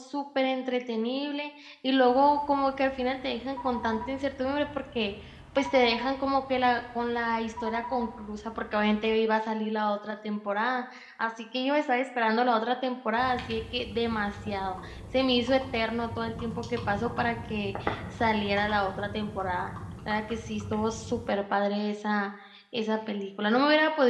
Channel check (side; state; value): both; identical; correlation 1.00